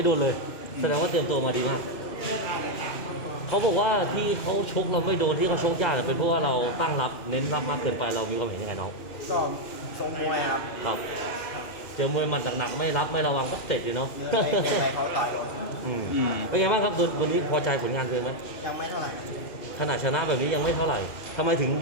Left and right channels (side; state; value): right; late; 2.5 ms